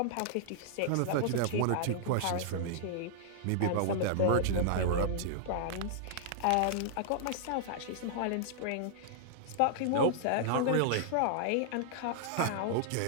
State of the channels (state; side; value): different; both; correlation -0.01